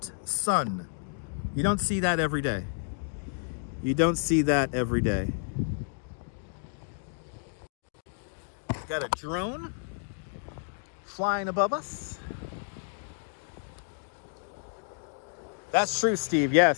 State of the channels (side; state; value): right; silent; digital silence